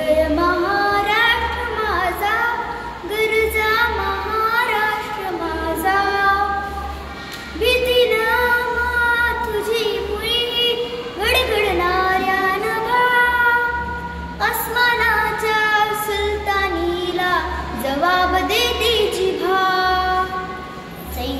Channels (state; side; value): identical; both; correlation 1.00